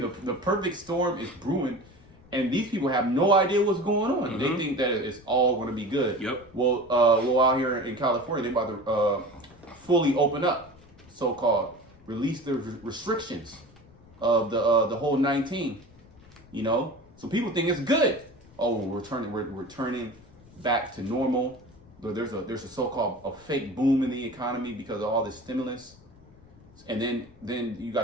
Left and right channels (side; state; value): left; noise; rumble, 25 dB below the sound